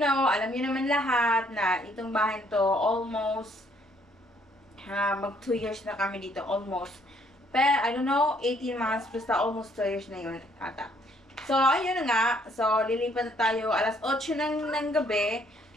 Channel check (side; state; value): both; normal; correlation 0.66